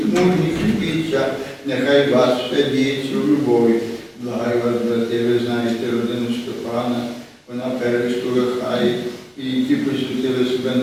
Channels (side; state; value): both; identical; correlation 1.00